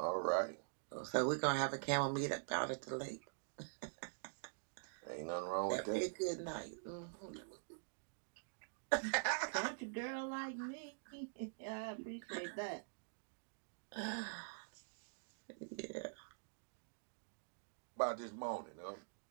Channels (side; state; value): left; silent; digital silence